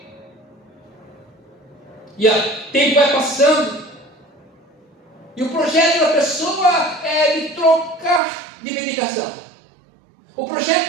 E o tempo vai passando, e o projeto da pessoa é de trocar de medicação. O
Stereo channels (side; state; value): left; drops out; at 8.2 s